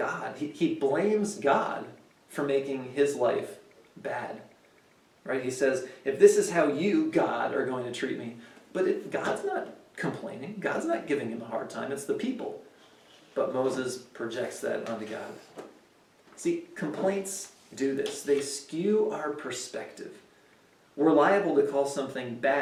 He blames God for making his life bad. Right? He says, if this is how you, God, are going to treat me, but God's not complaining. God's not giving him a hard time. It's the people. But Moses projects that onto God. See, complaints do this. They skew our perspective. We're liable to call something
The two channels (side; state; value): both; identical; correlation 1.00